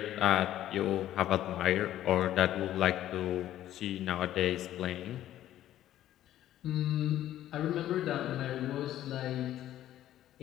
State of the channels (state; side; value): quieter; right; 12.7 dB